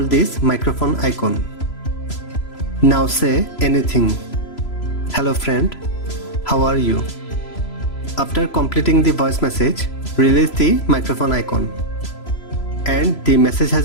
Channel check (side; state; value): right; late; 3.0 ms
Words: this microphone icon. Now say anything. Hello friend, how are you? After completing the voice message, release the microphone icon. And the message has